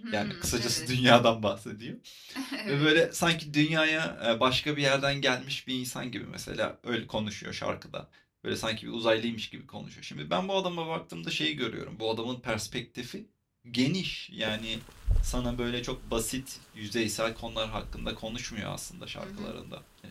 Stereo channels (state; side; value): identical; both; correlation 1.00